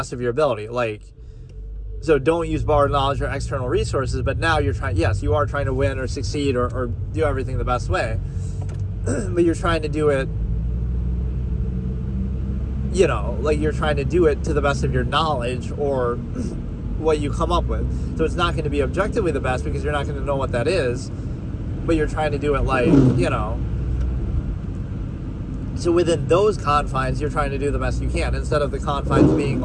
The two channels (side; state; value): both; identical; correlation 1.00